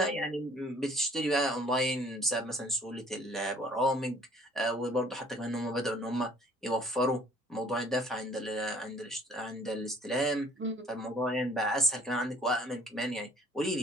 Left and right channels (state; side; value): normal; both; correlation 0.55